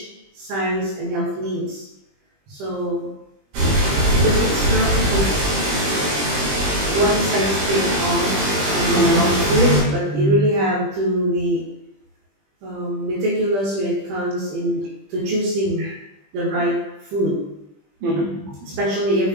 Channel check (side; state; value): left; late; 20 ms